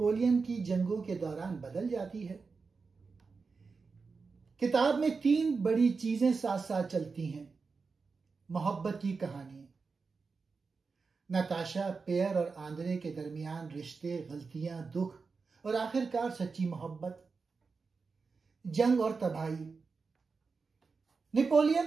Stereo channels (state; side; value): quieter; left; 4.7 dB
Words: की जंगों के दौरान बदल जाती है। किताब में 3 बड़ी चीजें साथ साथ चलती हैं। मोहब्बत की कहानी, नताशा, पेयर और आंद्रे के दरमियान रिश्ते, गलतियां, दुख और आखिरकार सच्ची मोहब्बत। जंग और तबाही,